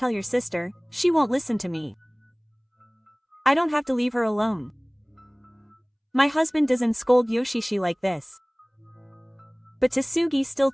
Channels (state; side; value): identical; both; correlation 1.00